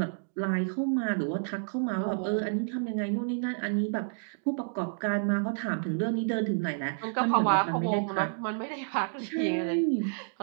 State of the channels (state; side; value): silent; left; digital silence